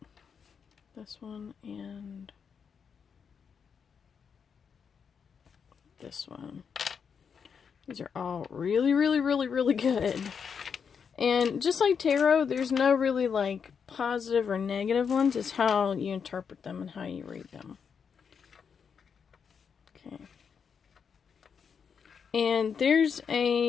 This one and this one. These are all really, really, really, really good. And just like tarot, there's no really like positive or negative ones. It's how you interpret them and how you read them. Okay. And there's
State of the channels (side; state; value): right; quieter; 6.6 dB